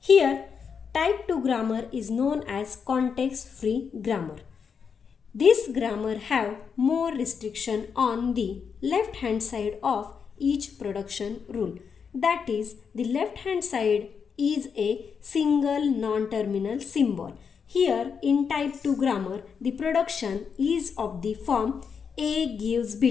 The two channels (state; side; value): quieter; right; 6.4 dB